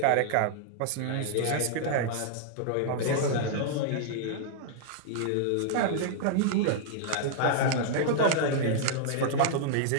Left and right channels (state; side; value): different; both; correlation -0.01